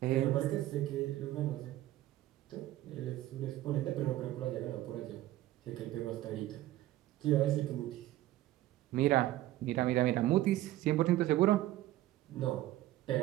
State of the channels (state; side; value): quieter; left; 15.1 dB